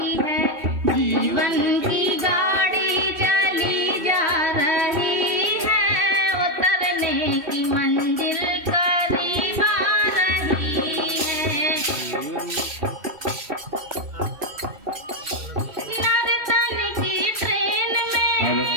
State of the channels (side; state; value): left; late; 3.0 ms